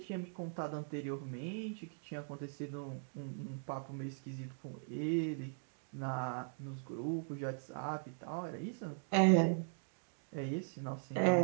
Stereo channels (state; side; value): silent; left; digital silence